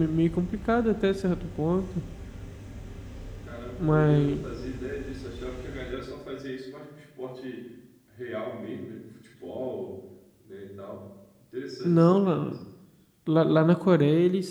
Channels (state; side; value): identical; both; correlation 1.00